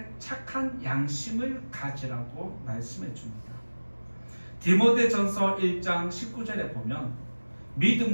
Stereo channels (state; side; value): inverted; both; correlation -1.00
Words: 착한 양심을 가지라고 말씀해 줍니다. 디모데전서 1장 19절에 보면